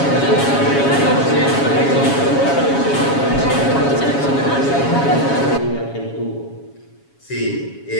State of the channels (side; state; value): right; late; 7.2 ms